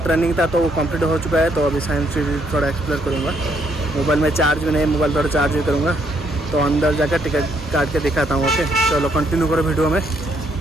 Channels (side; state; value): both; normal; correlation 0.71